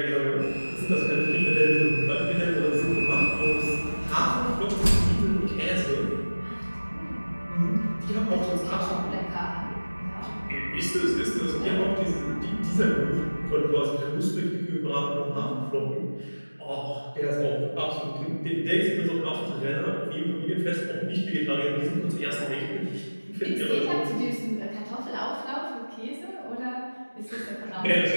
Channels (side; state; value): both; inverted; correlation -1.00